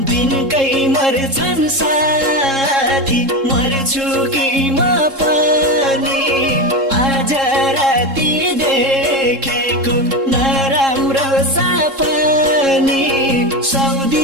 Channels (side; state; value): left; late; 3.7 ms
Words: दिनकै मर्छन् साथी मर्छु कि म पनि आज राति देखेको नराम्रो सपनी